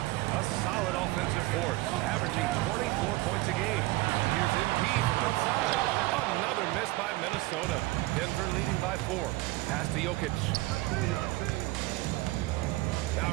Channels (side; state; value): left; quieter; 19.7 dB